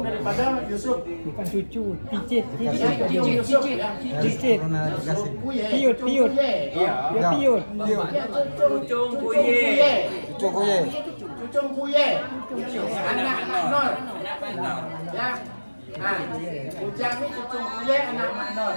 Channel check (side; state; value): both; inverted; correlation -1.00